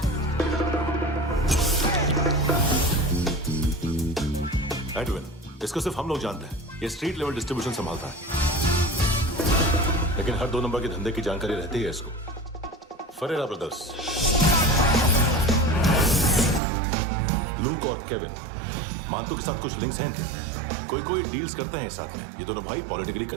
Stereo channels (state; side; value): drops out; left; at 16.6 s